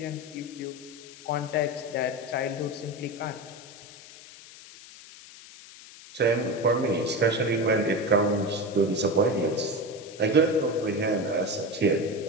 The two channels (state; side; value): noise; left; hiss, 18 dB below the sound